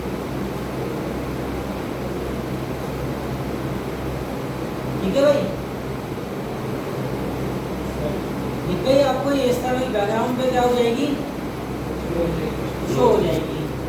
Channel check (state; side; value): identical; both; correlation 1.00